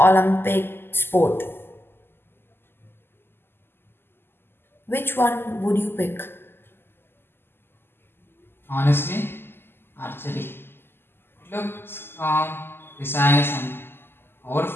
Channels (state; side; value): late; right; 0.11 ms